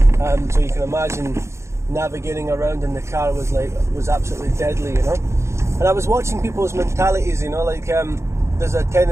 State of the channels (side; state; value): left; late; 0.13 ms